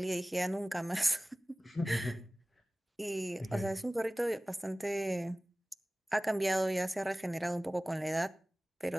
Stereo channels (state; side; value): normal; both; correlation 0.98